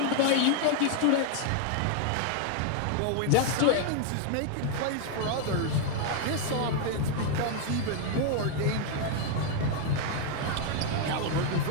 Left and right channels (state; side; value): different; both; correlation 0.00